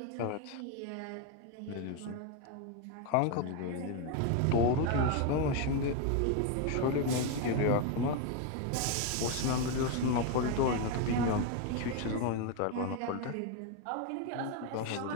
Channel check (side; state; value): both; different; correlation 0.02